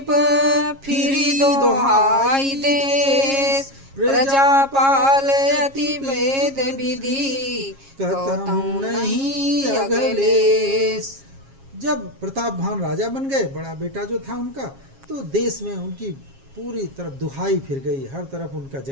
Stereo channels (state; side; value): late; left; 7.4 ms